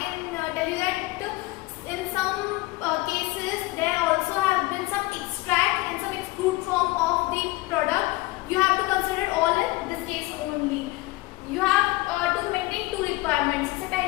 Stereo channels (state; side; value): quieter; right; 20.7 dB